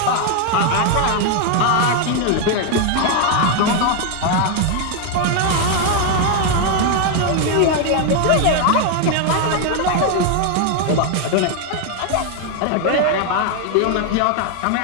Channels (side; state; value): both; different; correlation 0.01